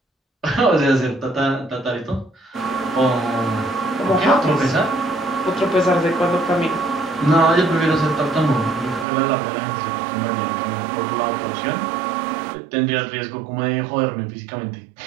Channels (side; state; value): left; drops out; at 9.1 s